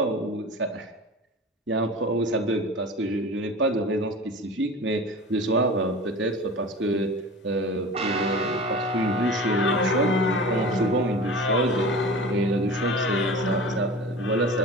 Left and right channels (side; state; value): both; normal; correlation 0.35